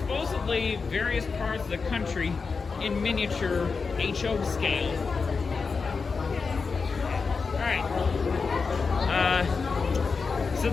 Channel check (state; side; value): quieter; right; 4.9 dB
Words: various parts of the country in miniature HO scale. Alright.